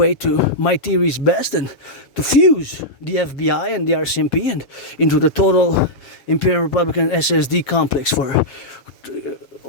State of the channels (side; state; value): right; late; 7.4 ms